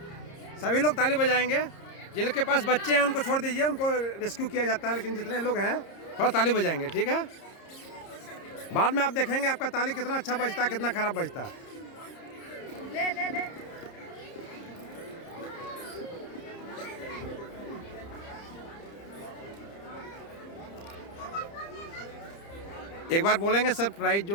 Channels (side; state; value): right; late; 30 ms